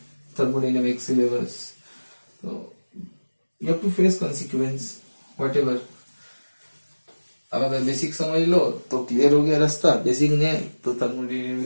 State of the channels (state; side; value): inverted; both; correlation -1.00